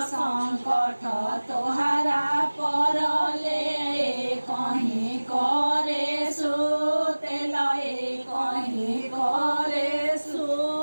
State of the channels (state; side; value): inverted; both; correlation -1.00